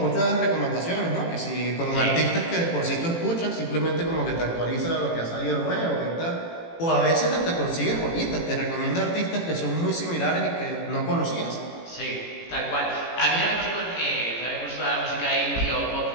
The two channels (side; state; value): right; late; 18 ms